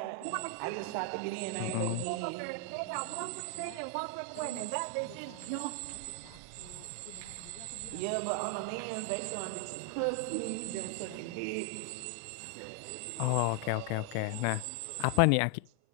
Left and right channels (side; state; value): both; different; correlation 0.00